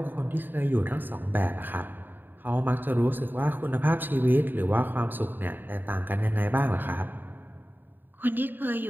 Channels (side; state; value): left; late; 0.092 ms